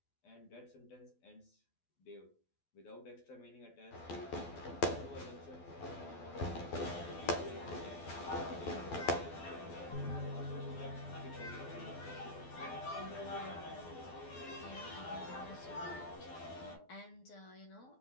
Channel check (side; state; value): right; late; 12 ms